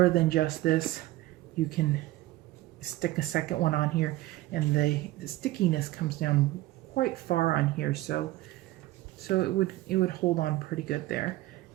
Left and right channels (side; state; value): left; quieter; 17.0 dB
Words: than just this, you can stick a second one on here, and the stickiness comes down quite far on here, so it would hold on pretty good there.